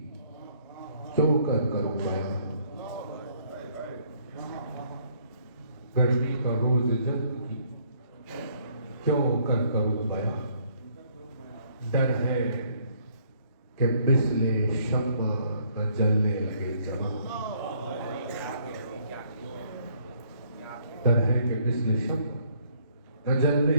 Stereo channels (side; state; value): both; inverted; correlation -0.65